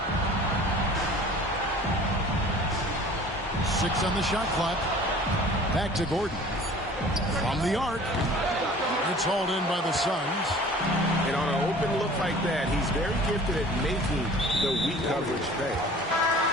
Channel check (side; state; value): both; normal; correlation 0.46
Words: 6 on the shot clock. Back to Gordon. From the arc. It's hauled in by the Suns. And on an open look like that, he's very gifted at making the weak coverage pay.